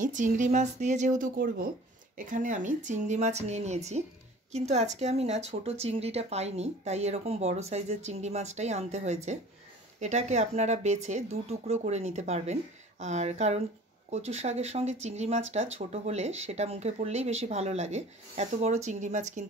চিংড়ি মাছ দিয়ে যেহেতু করব, এখানে আমি চিংড়ি মাছ নিয়ে নিয়েছি। কিন্তু আজকে আমি না ছোট চিংড়িটা পাইনি, তাই এরকম বড় সাইজের চিংড়ি মাছটাই আনতে হয়েছে। এটাকে আপনারা বেছে দু টুকরো করে নিতে পারবেন। আর কারণ কচুর শাকের সঙ্গে চিংড়ি মাছটা ছোট হলে সেটা মুখে পড়লেই বেশি ভালো লাগে, এত বড় চিংড়ি মাছ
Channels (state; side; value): normal; both; correlation 0.45